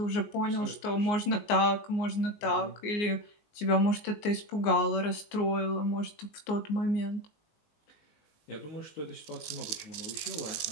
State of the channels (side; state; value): right; late; 19 ms